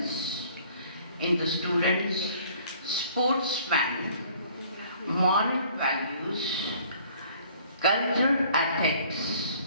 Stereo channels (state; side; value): inverted; both; correlation -0.56